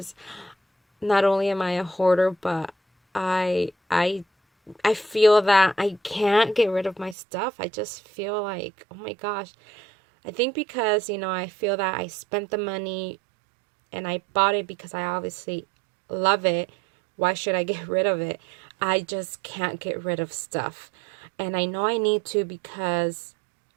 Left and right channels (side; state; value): left; drops out; at 7.2 s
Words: not only am I a hoarder, but I feel that I can't get rid of my stuff. I just feel like, oh my gosh. I think because, you know, I feel that I spent the money and I bought it because I obviously love it. Why should I get rid of it? I just can't get rid of stuff. And I know I need to, because